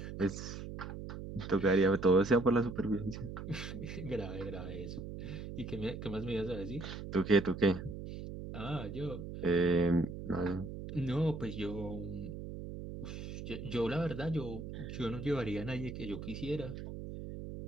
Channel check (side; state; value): right; noise; hum, 8 dB below the sound